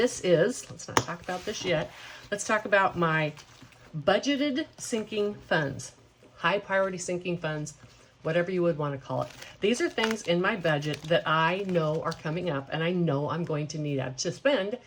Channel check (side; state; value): both; identical; correlation 1.00